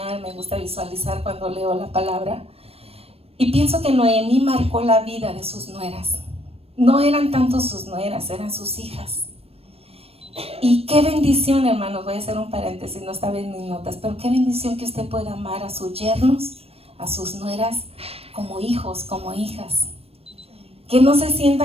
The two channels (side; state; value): left; late; 0.28 ms